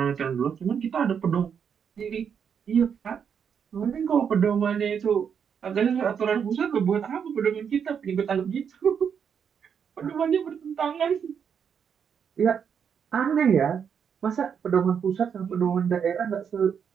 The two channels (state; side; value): quieter; left; 7.4 dB